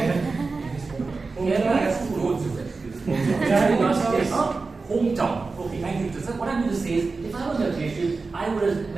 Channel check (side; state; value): left; quieter; 4.1 dB